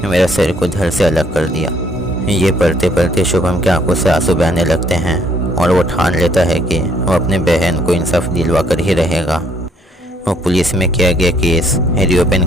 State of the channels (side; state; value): both; normal; correlation 0.66